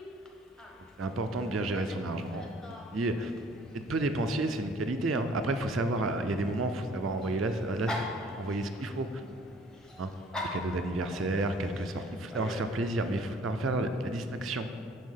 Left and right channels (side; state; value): both; normal; correlation 0.55